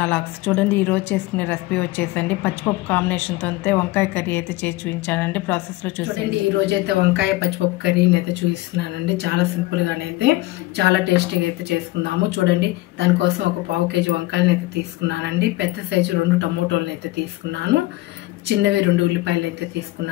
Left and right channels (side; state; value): right; quieter; 18.9 dB